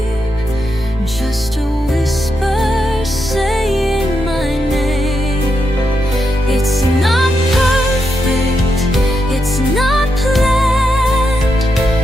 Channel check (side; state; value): both; normal; correlation 0.84